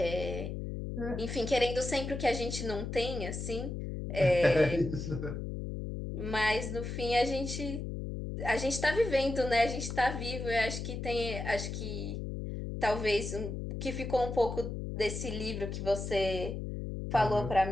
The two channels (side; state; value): left; noise; hum, 5 dB below the sound